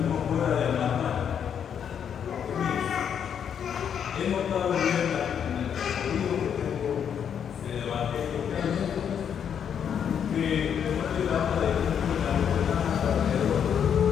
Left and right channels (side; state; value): right; quieter; 8.2 dB